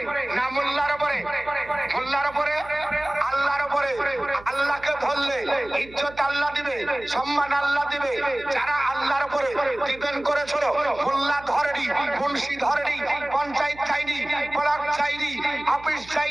না মোল্লার উপরে? মোল্লার উপরে, আল্লাহর উপরে। আল্লাহকে ধরলে ইজ্জত আল্লাহ দিবে, সম্মান আল্লাহ দিবে। যারা আল্লাহর উপরে ডিপেন্ড করেছিল, মোল্লা ধরেনি, মুন্সি ধরেনি, পঞ্চায়েত চাইনি, ব্লক চাইনি, অফিস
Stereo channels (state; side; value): noise; right; hum, 20 dB below the sound